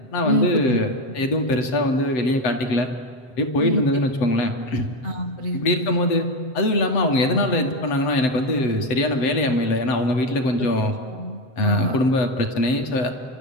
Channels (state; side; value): late; right; 7.8 ms